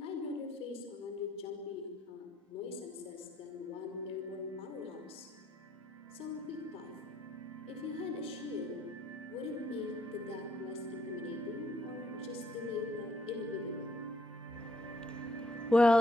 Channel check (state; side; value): normal; both; correlation 0.70